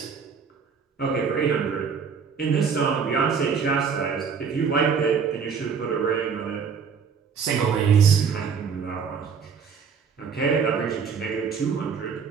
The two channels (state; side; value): quieter; left; 6.1 dB